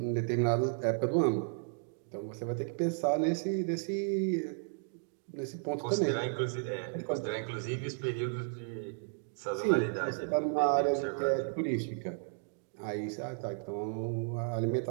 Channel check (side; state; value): left; silent; digital silence